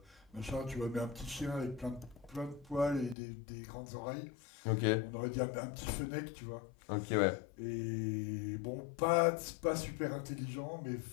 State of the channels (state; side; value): drops out; right; at 3.2 s